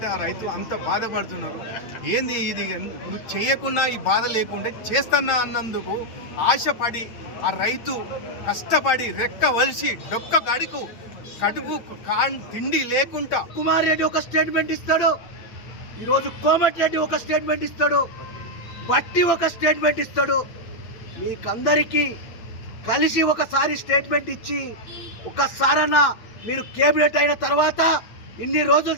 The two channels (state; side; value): late; right; 8.9 ms